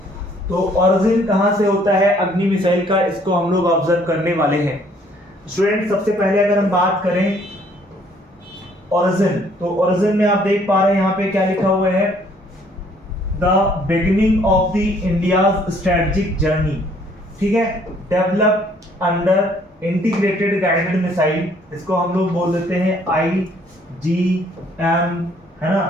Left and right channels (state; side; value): normal; both; correlation 0.62